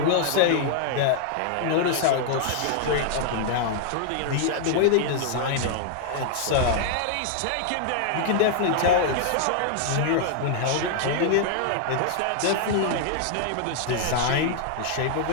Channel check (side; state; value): both; different; correlation -0.01